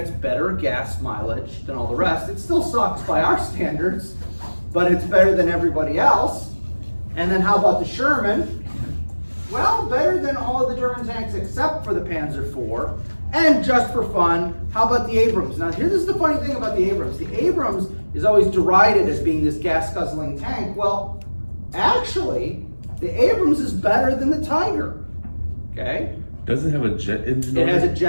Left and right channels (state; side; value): inverted; both; correlation -1.00